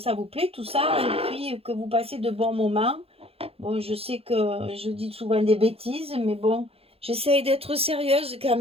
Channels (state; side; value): late; left; 0.28 ms